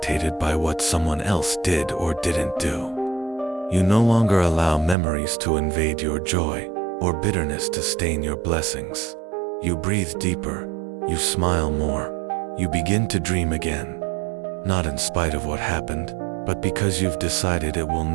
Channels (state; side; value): drops out; left; at 5.0 s